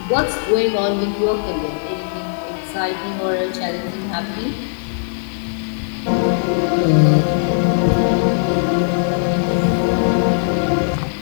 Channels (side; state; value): right; silent; digital silence